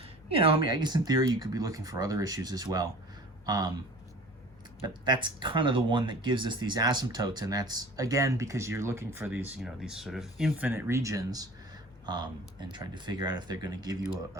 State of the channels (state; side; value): normal; both; correlation 0.43